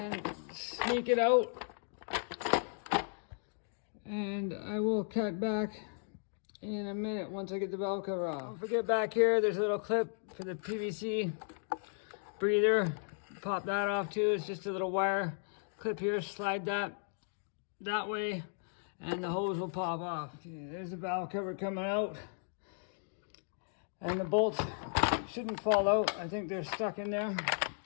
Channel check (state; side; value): silent; right; digital silence